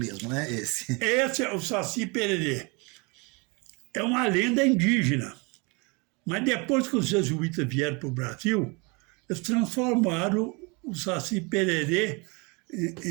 né? Esse é o Saci Pererê. É uma lenda indígena. Mas depois que os jesuítas vieram para o Brasil, eles transformaram o Saci Pererê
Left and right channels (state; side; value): quieter; left; 29.4 dB